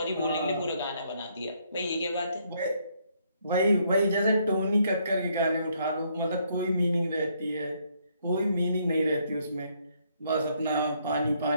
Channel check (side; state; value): both; inverted; correlation -0.71